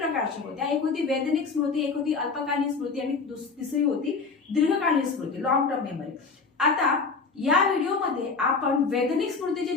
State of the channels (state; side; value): quieter; right; 4.7 dB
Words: होत्या। एक होती वैधानिक स्मृती, एक होती अल्पकालीन स्मृती आणि तिसरी होती दीर्घकालीन स्मृती, लॉंग टर्म मेमरी। आता या व्हिडिओमध्ये आपण वैधानिक स्मृतीचे